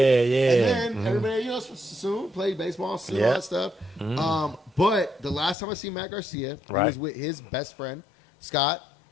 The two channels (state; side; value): drops out; right; at 5.6 s